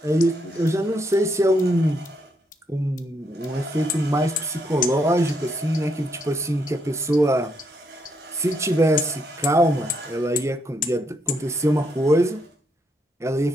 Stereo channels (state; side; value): normal; both; correlation 0.76